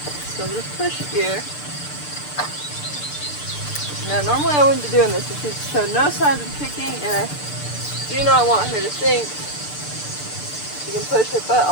So I'm going to push here. Now normally I wouldn't be doing this, but she's showed no signs of kicking, and I do not want her to think she can push her butt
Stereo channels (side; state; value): right; late; 6.8 ms